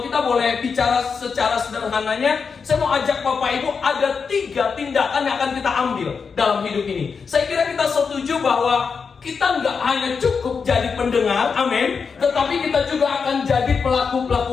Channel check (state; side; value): quieter; right; 5.6 dB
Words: kita boleh bicara secara sederhananya, saya mau ajak Bapak Ibu ada 3 tindakan yang akan kita ambil dalam hidup ini. Saya kira kita setuju bahwa kita nggak hanya cukup jadi pendengar, amin, tetapi kita juga akan jadi